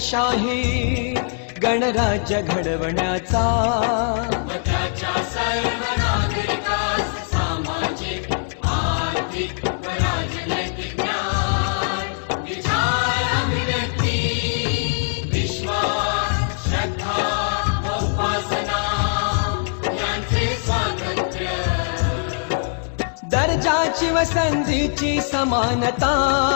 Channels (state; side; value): silent; right; digital silence